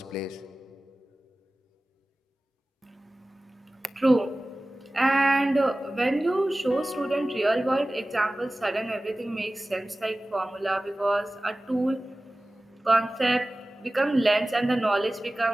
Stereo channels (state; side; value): normal; both; correlation 0.97